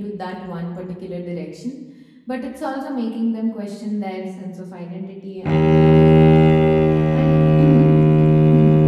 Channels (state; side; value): identical; both; correlation 1.00